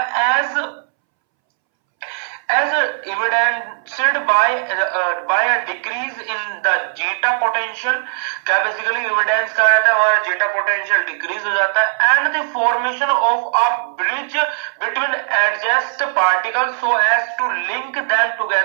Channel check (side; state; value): left; silent; 66 dB below the other